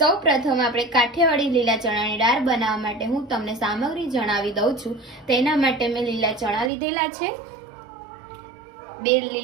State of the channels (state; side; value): drops out; left; at 6.7 s